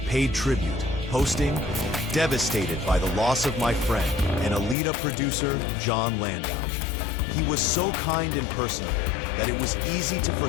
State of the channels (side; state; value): right; drops out; at 4.8 s